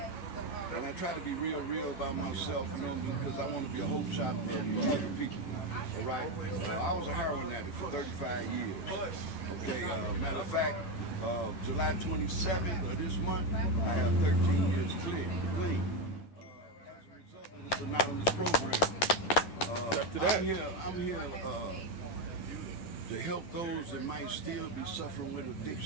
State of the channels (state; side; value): late; right; 11 ms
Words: And I try to be real about myself, you know, because I want to be a hope shot for other people. All right. I was a heroin addict for 35 years. Okay. Matter of fact, July 27th of this month, I have 13 years clean. As a result of this anonymous program. I'm here to help those that might still be suffering with